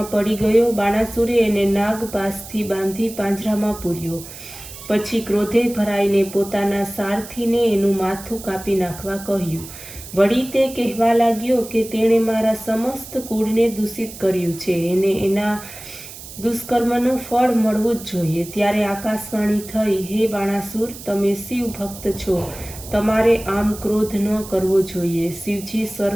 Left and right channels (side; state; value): right; noise; hiss, 14 dB below the sound